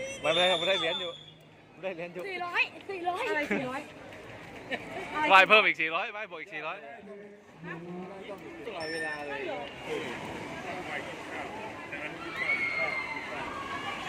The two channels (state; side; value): identical; both; correlation 1.00